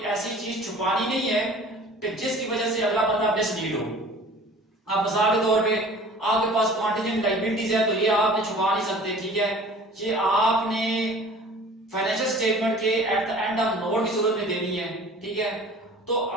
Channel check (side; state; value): both; normal; correlation 0.45